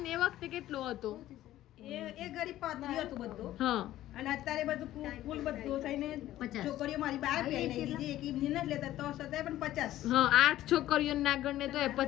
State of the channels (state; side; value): quieter; right; 14.1 dB